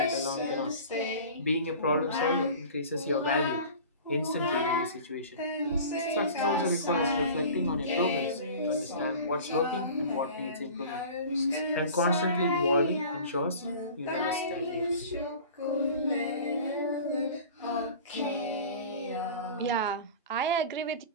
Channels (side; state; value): both; inverted; correlation -0.40